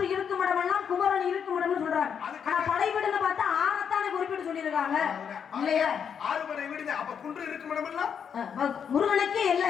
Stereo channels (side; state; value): right; quieter; 7.4 dB